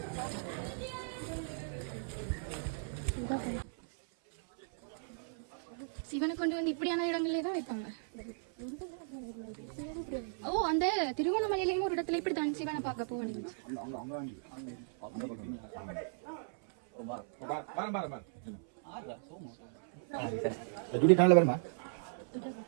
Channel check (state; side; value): silent; left; 54 dB below the other